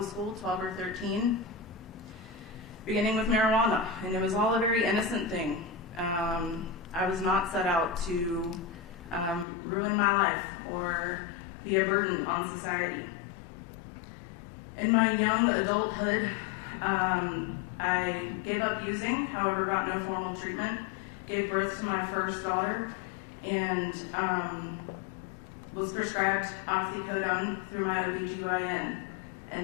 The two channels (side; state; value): right; drops out; at 9.5 s